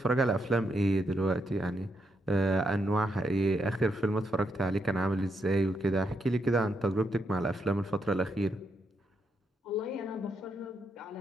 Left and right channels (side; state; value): both; normal; correlation 0.80